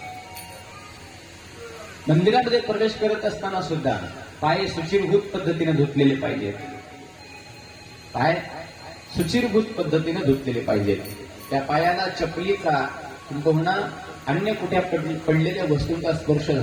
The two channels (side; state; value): both; identical; correlation 1.00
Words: मंदिरामध्ये प्रवेश करत असताना सुद्धा पाय सुचिरभूत पद्धतीने धुतलेले पाहिजेत. पाय सुचिरभूत पद्धतीने धुतलेले पाहिजेत. त्या पायाला चपलीचा किंबहुना अन्य कुठे पडलेल्या वस्तूंचा स्पर्श